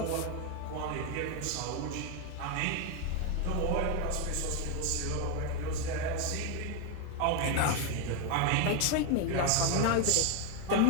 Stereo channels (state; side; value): different; both; correlation 0.01